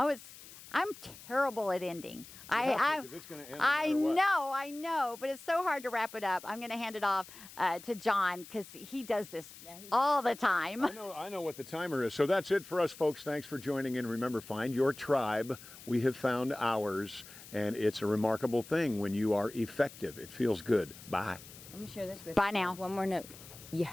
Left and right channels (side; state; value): left; noise; hiss, 17 dB below the sound